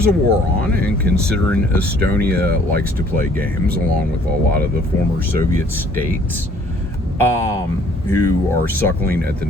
a war on, and considering Estonia likes to play games, along with a lot of the former Soviet states, who are suckling at the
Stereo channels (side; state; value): both; normal; correlation 0.59